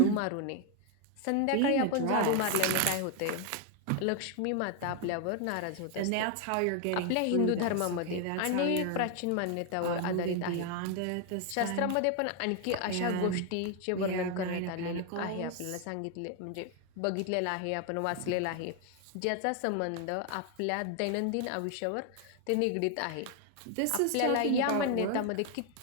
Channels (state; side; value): different; both; correlation 0.01